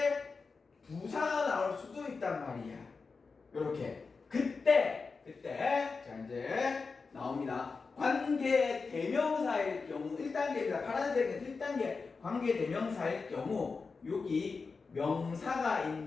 부사가 나올 수도 있단 말이야. 요렇게. 그때 자 이제 나옵니다. 관계 대명사일 경우 1단계입니다. 파란색은 1단계 관계 대명사일 경우 여기 명사가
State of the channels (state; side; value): quieter; right; 4.6 dB